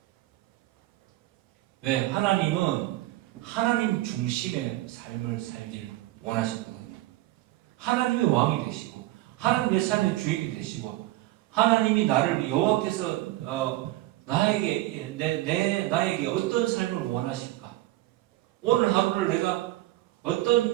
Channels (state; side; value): quieter; left; 17.1 dB